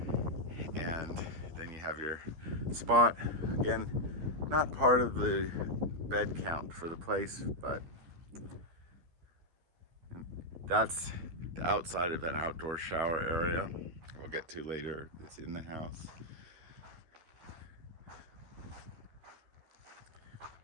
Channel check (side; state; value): left; late; 12 ms